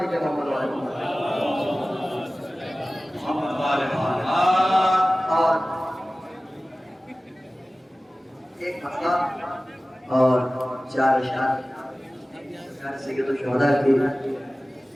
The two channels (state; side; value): normal; both; correlation 0.97